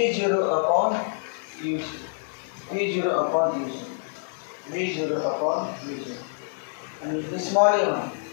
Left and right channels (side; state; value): right; silent; 61 dB below the other